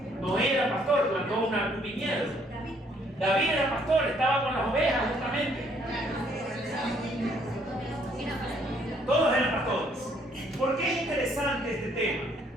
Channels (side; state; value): both; normal; correlation 0.66